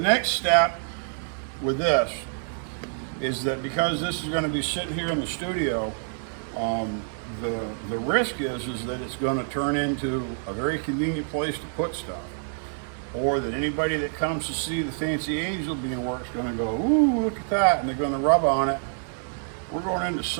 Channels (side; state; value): left; silent; digital silence